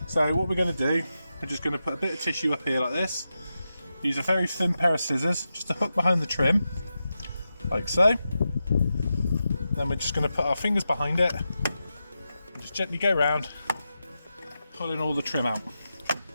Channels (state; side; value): inverted; both; correlation -0.90